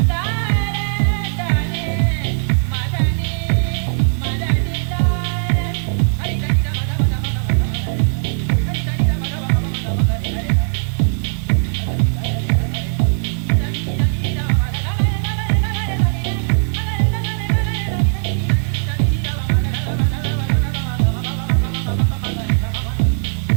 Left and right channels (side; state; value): left; silent; 67 dB below the other